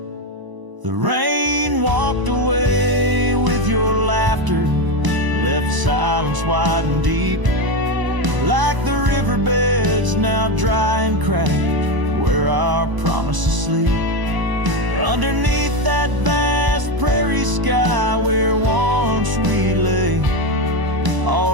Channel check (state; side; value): late; left; 1.0 ms